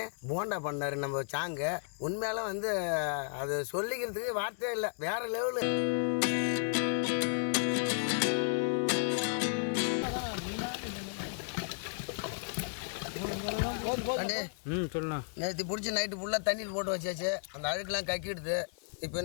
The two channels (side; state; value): right; silent; digital silence